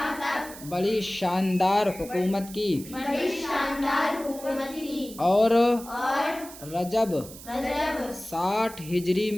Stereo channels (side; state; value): right; noise; hiss, 16 dB below the sound